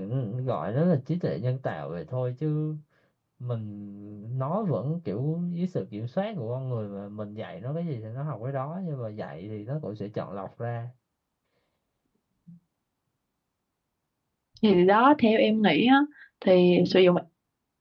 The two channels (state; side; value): identical; both; correlation 1.00